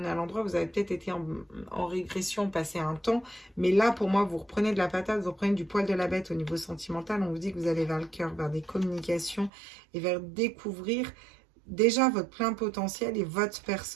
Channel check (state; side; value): drops out; left; at 9.5 s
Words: à l'endroit, vous avez peut-être été en régression, passé un temps. Mais là, pour moi, vous reprenez de la patate, vous reprenez du poil de la bête au niveau sentimental. On vous dit que vous allez vers le cœur, vers des communications et vers découvrir déjà votre plein potentiel et votre